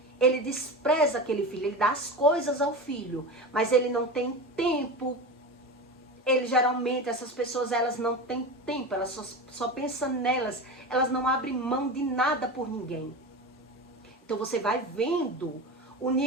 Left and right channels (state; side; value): normal; both; correlation 0.26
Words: Ele despreza aquele filho, ele dá as coisas ao filho, mas ele não tem tempo. Ele geralmente, essas pessoas, elas não têm tempo, elas só pensam nelas, elas não abrem mão de nada por ninguém. Então você vai vendo o